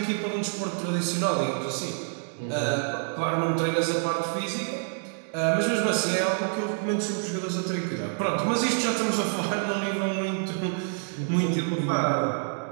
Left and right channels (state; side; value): silent; left; 60 dB below the other